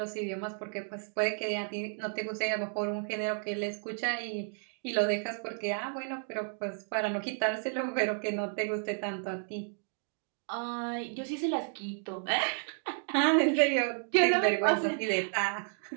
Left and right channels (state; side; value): silent; left; 56 dB below the other